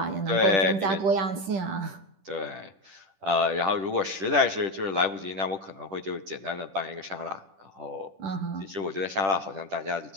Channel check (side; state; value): left; late; 10 ms